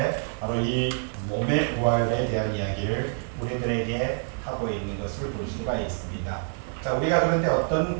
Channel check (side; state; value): left; silent; 59 dB below the other